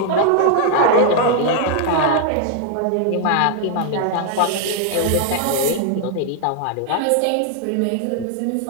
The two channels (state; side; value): different; both; correlation 0.00